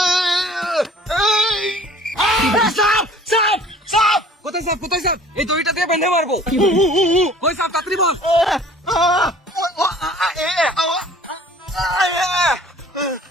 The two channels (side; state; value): both; normal; correlation 0.49